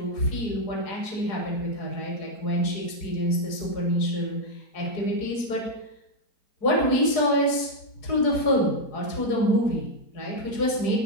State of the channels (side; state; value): right; late; 4.7 ms